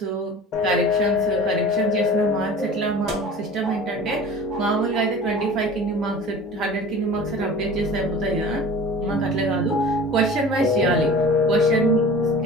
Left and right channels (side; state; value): both; normal; correlation 0.40